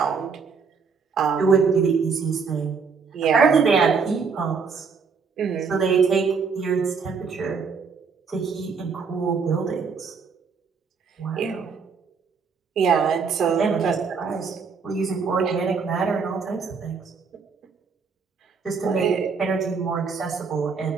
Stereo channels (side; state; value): left; quieter; 5.4 dB